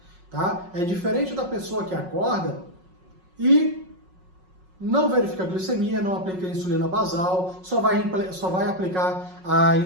Tá? É diferente da pessoa que acorda e não verifica a glicemia, não aplica a insulina basal, só vai aplicar a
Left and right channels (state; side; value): late; left; 5.5 ms